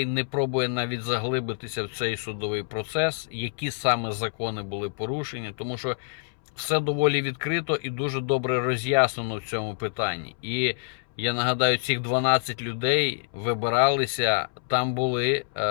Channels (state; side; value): silent; right; 60 dB below the other